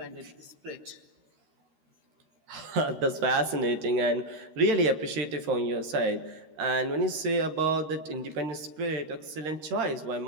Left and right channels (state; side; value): late; left; 13 ms